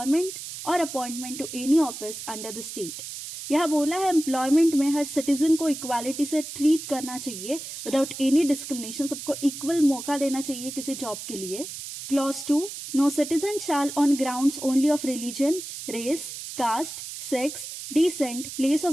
और appointment to any office under the state. यह बोला है employment में हर citizen को equality से treat करना चाहिए विदाउट एनी डिस्क्रिमिनेशन, सबको इक्वल मौका देना चाहिए किसी जॉब के लिए। Clause 2, no citizen shall on grounds only of religion, race, caste, sex, descent, place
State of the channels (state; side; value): noise; right; hiss, 9 dB below the sound